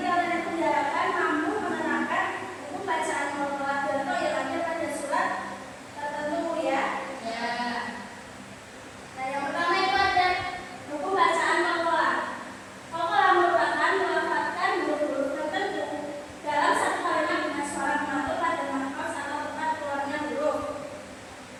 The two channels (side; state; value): both; identical; correlation 1.00